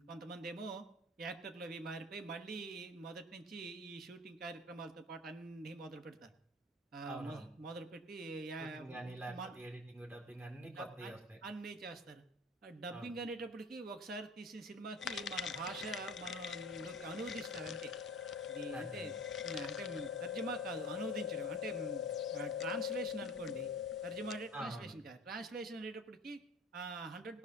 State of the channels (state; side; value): normal; both; correlation 0.40